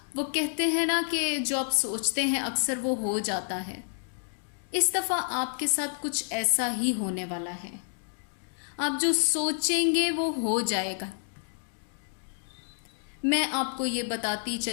वो कहते हैं ना कि जो आप सोचते हैं अक्सर वो हो जाता है। इस दफ़ा आपके साथ कुछ ऐसा ही होने वाला है। आप जो सोचेंगे वो हो जाएगा। मैं आपको ये बताती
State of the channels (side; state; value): right; silent; digital silence